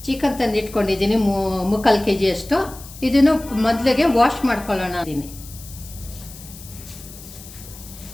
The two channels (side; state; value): left; noise; hiss, 17 dB below the sound